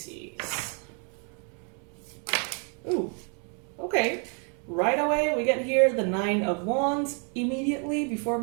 Ooh, okay. Right away, we get here the Nine of Wands immediately before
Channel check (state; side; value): quieter; left; 39.7 dB